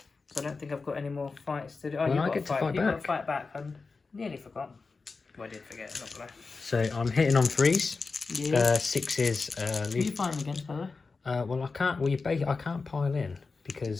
So I don't think I've got any more fights to do. Oh, Well, you've I got get to to fight. fight You've got to back. fight back. I nearly forgot. Well, I did forget. I'm not gonna lie. So I'm hitting on 3s. Yeah. 6s. Who are you fighting against, by the way? Well, I can't. Well, I can't pile in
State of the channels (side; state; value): right; quieter; 4.3 dB